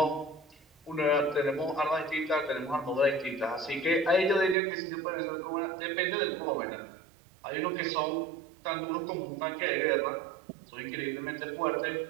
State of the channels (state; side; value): drops out; left; at 4.5 s